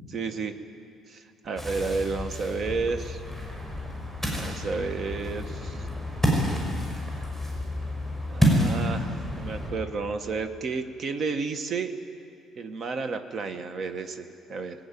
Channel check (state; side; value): normal; both; correlation 0.73